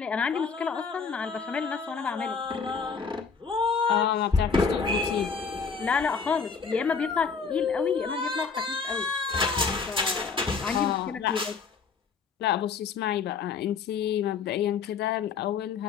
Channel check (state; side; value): quieter; right; 5.6 dB